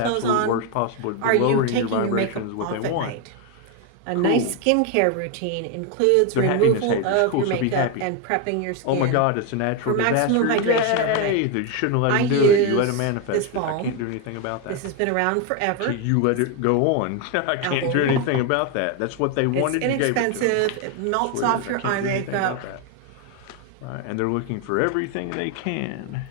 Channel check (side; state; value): both; different; correlation 0.01